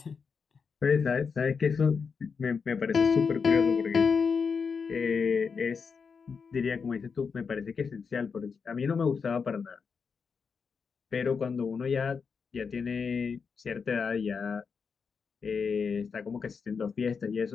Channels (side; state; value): right; quieter; 5.7 dB